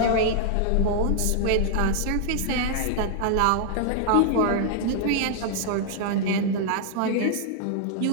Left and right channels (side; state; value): both; different; correlation -0.01